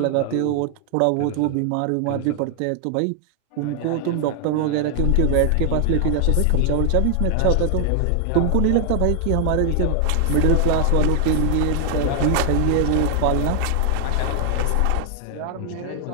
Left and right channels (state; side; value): different; both; correlation 0.00